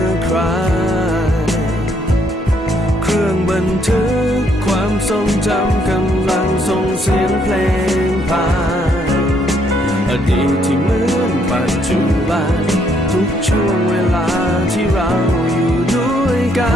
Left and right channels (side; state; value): both; normal; correlation 0.70